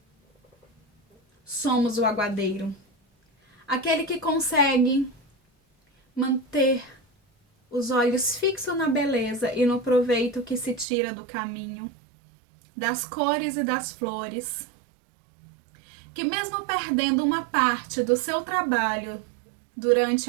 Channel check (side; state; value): left; drops out; at 10.9 s